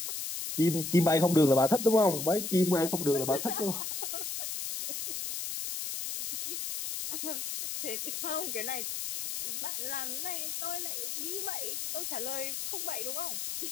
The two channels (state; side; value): noise; left; hiss, 4 dB below the sound